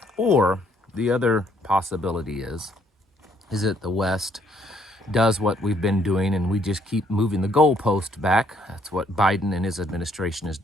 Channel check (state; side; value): normal; both; correlation 0.67